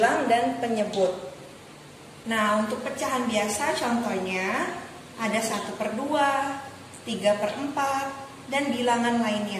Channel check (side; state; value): both; identical; correlation 1.00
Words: dan penyebut. Nah, untuk pecahan biasa contohnya ada 1/2, 3/4, dan bilangan